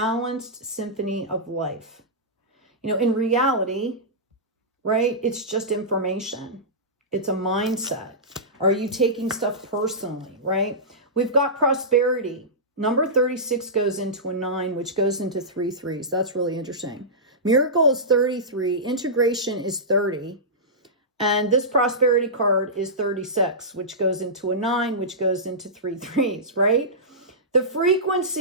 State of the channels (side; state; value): both; normal; correlation -0.16